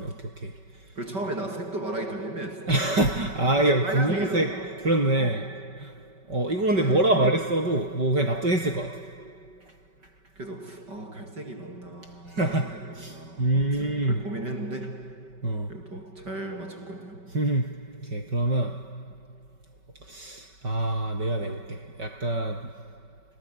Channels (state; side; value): late; left; 5.2 ms